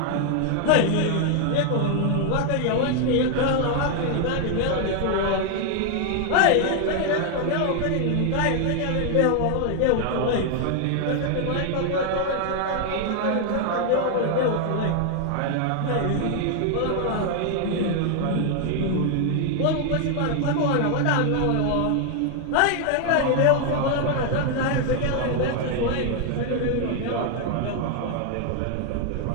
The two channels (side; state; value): both; different; correlation 0.00